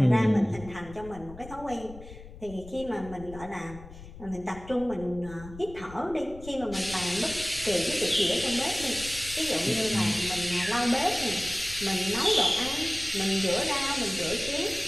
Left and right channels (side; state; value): left; noise; rumble, 16 dB below the sound